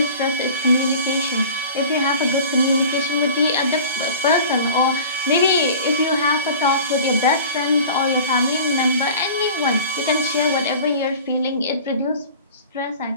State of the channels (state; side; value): inverted; both; correlation -0.40